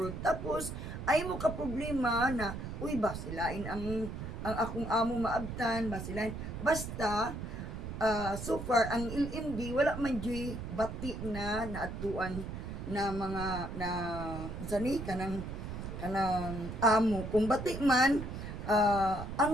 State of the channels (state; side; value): noise; right; rumble, 7 dB below the sound